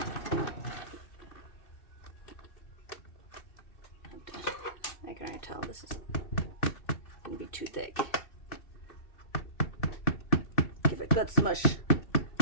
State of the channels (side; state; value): right; late; 2.7 ms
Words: I can already tell this is gonna be too thick. Give it good smush.